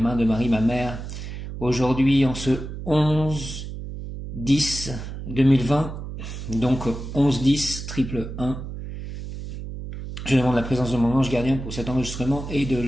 mains de Marie ma mère. Aujourd'hui, en ce 11-10-2020, donc 11-10 triple 1, je demande la présence de mon ange gardien pour cet enregistrement et de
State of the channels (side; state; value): right; noise; hum, 8 dB below the sound